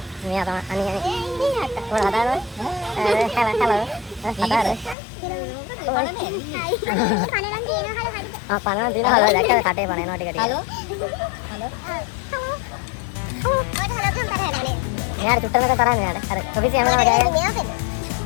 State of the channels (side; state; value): right; drops out; at 5.0 s